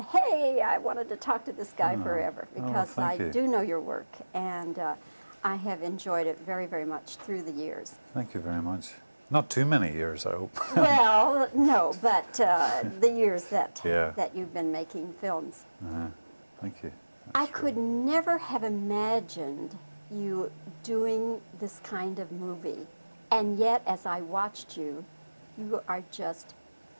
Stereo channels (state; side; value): inverted; both; correlation -1.00